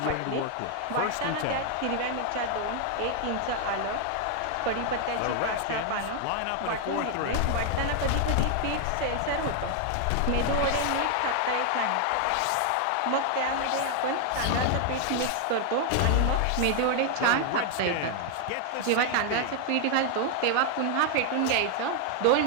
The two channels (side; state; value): both; different; correlation 0.00